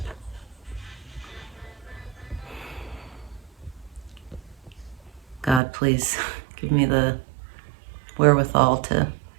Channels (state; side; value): drops out; left; at 5.6 s